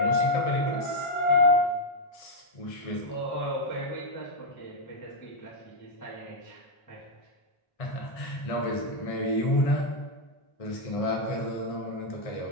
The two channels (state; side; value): late; right; 1.6 ms